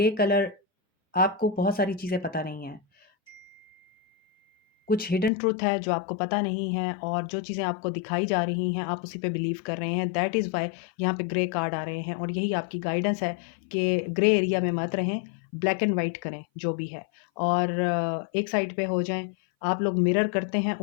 कलर आपको बहुत सारी चीज़ें पता नहीं हैं। कुछ हिडन ट्रुथ है जो आपको पता नहीं है, और जो चीज़ें आपको दिखाई जा रही हैं आप उसी पे बिलीव कर रहे हैं। दैट इज़ व्हाई यहाँ पे ग्रे कार्ड आ रहे हैं, और यही आपकी गाइडेंस है कि ग्रे एरिया में मत रहें, ब्लैक एंड वाइट करें जो भी है, और एक साइड पे हो जाएँ। आप लोग मिरर करते हैं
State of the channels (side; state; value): right; drops out; at 5.3 s